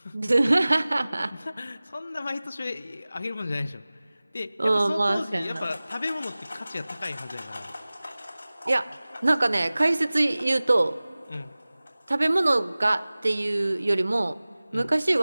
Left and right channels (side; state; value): both; inverted; correlation -0.99